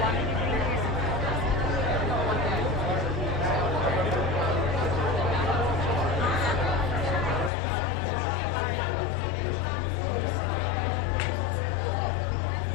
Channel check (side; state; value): right; drops out; at 7.5 s